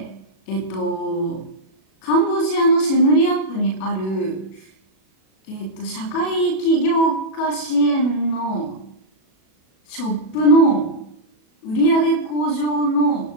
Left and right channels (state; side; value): late; right; 37 ms